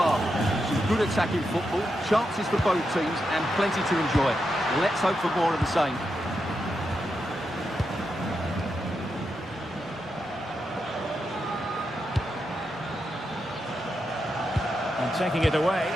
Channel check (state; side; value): normal; both; correlation 0.85